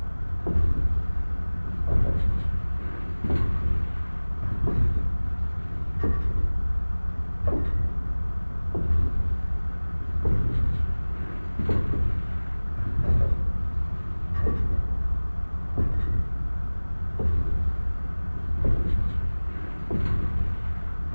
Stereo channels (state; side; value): inverted; both; correlation -1.00